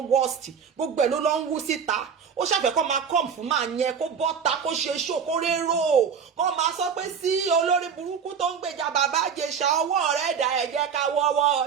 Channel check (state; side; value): quieter; left; 6.8 dB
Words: worst gbogbo ẹ̀ ló lọ ń wú síta. Ó ṣàfẹ́ kó máa kọ́m fún máa yẹn kó bọ́ta kó ṣe ṣó kó rérò kó máa sọ pé sí olórí burúkú tó ń gbèjà bàbá Ìjẹ̀ṣà ọwọ́ rẹ̀ dà ẹ jẹ́ ká wọ́wọ́